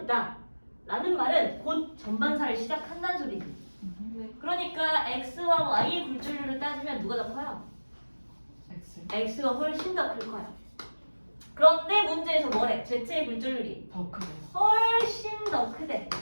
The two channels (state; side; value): inverted; both; correlation -1.00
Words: 라는 말은 곧 전반사를 시작한다는 소리지. 그러니까 X와 Y의 굴절률을 따지면 누가 더 커요? X. X가 훨씬 더 클 거야. 그런데 문제에서 뭐래? Z의 굴절률이 더 크네요. 훨씬 더 크대.